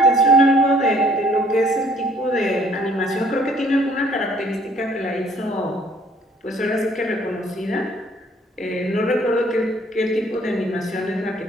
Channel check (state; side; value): normal; both; correlation 0.60